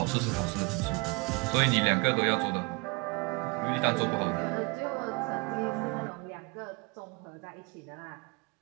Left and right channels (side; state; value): left; quieter; 29.6 dB